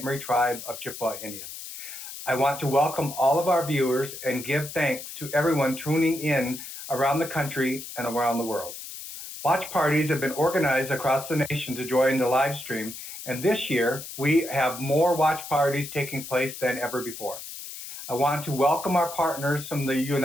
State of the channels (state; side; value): noise; left; hiss, 11 dB below the sound